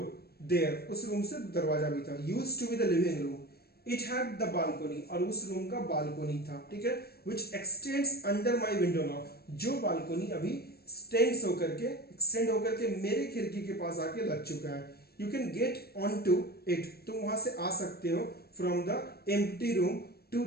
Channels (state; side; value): late; right; 0.46 ms